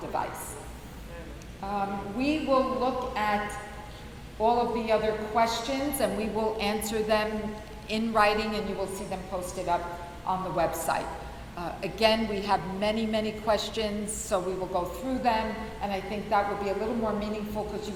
device. We will look at all of the other questions and we will answer them in writing and you will see them posted up on the website. Again, we have many, many questions, so we will go through them, and I think that will be a little more meaningful because you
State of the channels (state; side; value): identical; both; correlation 1.00